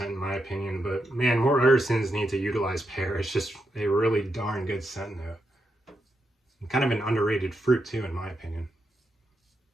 in my opinion. But man, more artisans need to utilize pear. It's just a really darn good scent note. And kind of an underrated fruit too, in my opinion.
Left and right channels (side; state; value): both; normal; correlation 0.84